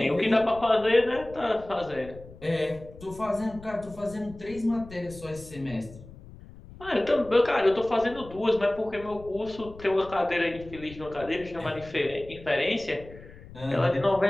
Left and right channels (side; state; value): left; noise; rumble, 18 dB below the sound